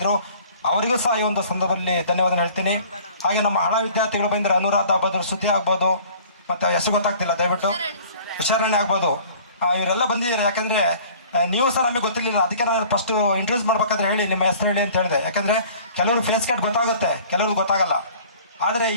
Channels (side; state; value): both; inverted; correlation -0.50